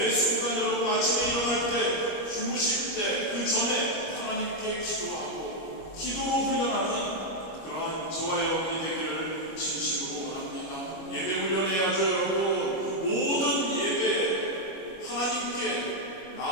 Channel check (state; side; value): late; right; 25 ms